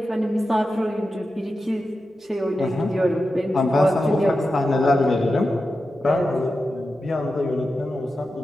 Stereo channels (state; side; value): normal; both; correlation 0.91